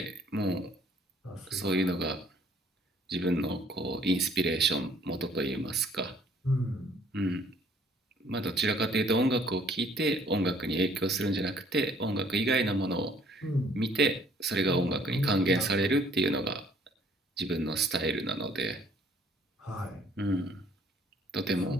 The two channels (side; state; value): both; normal; correlation 0.60